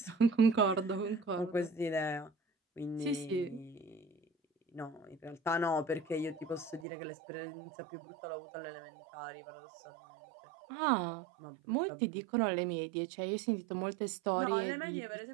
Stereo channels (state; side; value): drops out; left; at 6.9 s